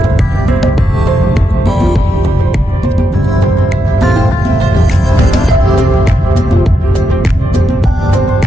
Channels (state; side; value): normal; both; correlation 0.83